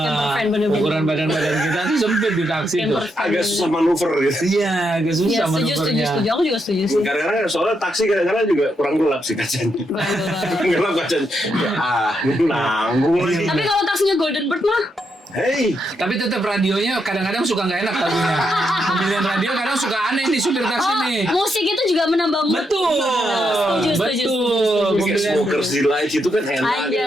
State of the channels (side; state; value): both; normal; correlation 0.81